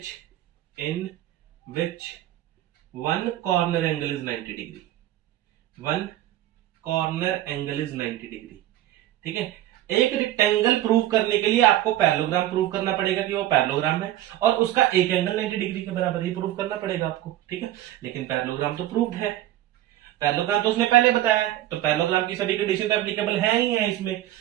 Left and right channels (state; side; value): quieter; left; 13.8 dB